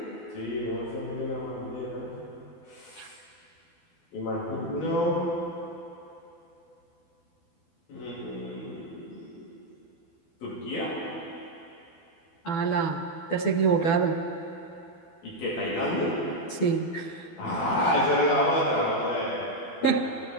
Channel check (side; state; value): right; late; 12 ms